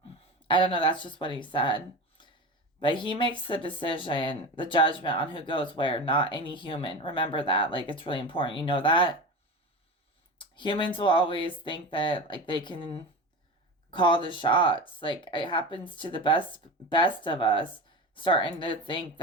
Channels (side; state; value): both; normal; correlation 0.27